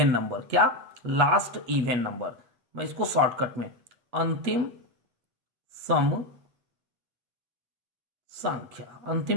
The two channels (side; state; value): left; late; 8.3 ms